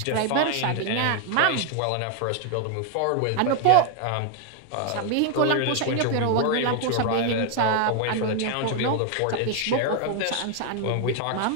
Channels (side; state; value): both; different; correlation 0.00